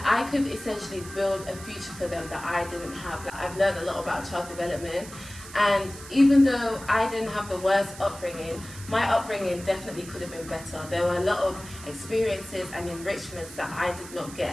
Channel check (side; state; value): right; noise; hiss, 15 dB below the sound